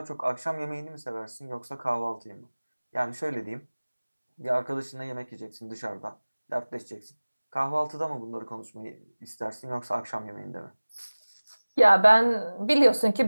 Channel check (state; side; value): inverted; both; correlation -1.00